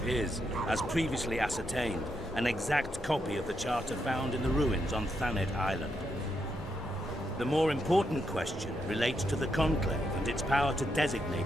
is, as previously ascertained, an exact copy of the charter found in the ruins on Thanet Island. The more important question relates to the Conclave and its power to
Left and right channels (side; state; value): both; normal; correlation 0.81